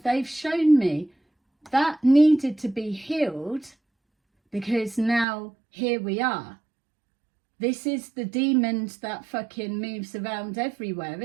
they've shown me that needed to be healed, because now here we are. This is the demons that fucking moves around everywhere,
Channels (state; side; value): drops out; left; at 5.2 s